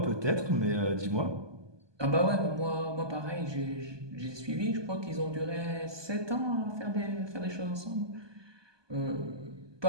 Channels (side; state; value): left; late; 1.2 ms